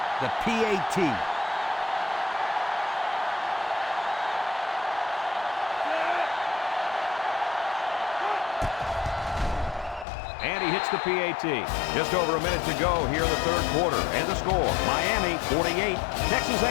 the PAT. And he hits the PAT. Just over a minute to go here in the third quarter. And the score, Miami 48, Texas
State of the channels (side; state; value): right; drops out; at 10.1 s